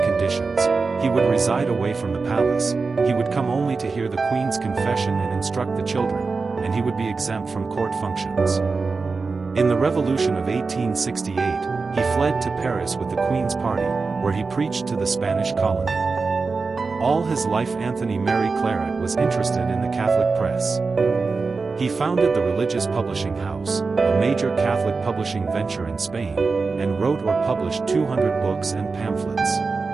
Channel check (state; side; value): quieter; left; 4.3 dB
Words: he would reside away from the palace, he would come only to hear the Queen's confession and instruct the children, and he would be exempt from court functions. In the Revolution of 1868, he fled to Paris with the Queen's party, where he preached to the Spanish colony. All his life Anthony Mary Claret was interested in the Catholic press. He founded the Religious Publishing House, a major Catholic publishing venture in Spain, and wrote or published 200 books and pamphlets.